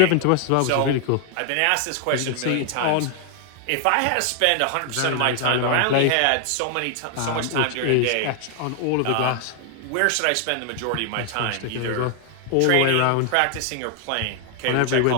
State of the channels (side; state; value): both; different; correlation 0.00